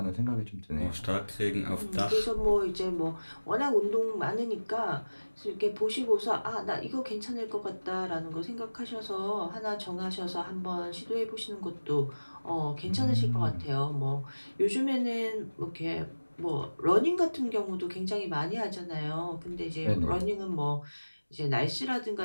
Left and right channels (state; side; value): inverted; both; correlation -1.00